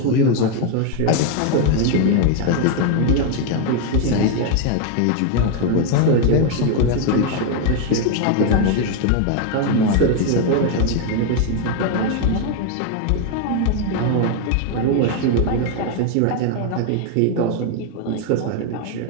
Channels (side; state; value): both; different; correlation 0.01